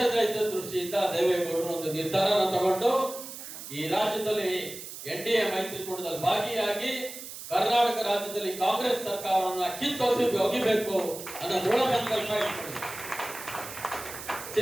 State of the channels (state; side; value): noise; right; hiss, 11 dB below the sound